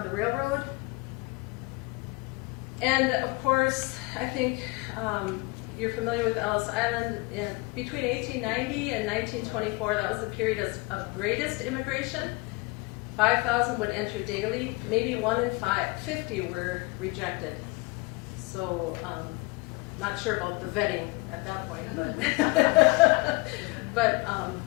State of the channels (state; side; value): quieter; right; 25.4 dB